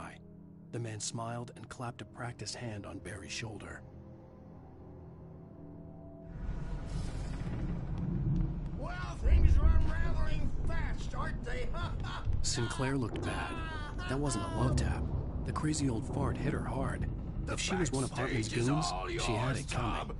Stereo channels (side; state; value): both; identical; correlation 1.00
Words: The man smiled and clapped a practiced hand on Barry's shoulder. Well, things are unraveling fast, aren't they? Sinclair looked bad. That wasn't a love tap. The crazy old fart hit her hard. If she was one of Hartman's goons, she had it coming.